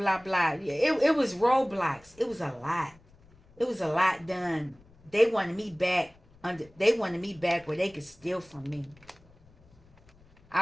blah. It was roadblocks. It was a lot. It was a lot done. They wanted me back where they could steal from me.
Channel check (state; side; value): noise; left; rumble, 28 dB below the sound